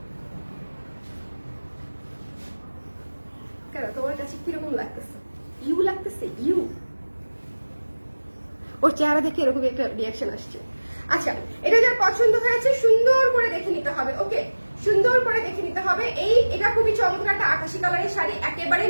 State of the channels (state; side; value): inverted; both; correlation -1.00